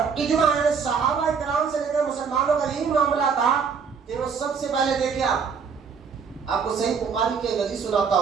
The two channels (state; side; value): quieter; left; 6.0 dB